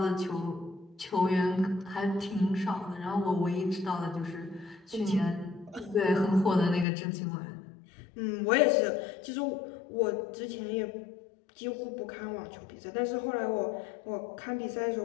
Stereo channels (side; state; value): right; drops out; at 6.9 s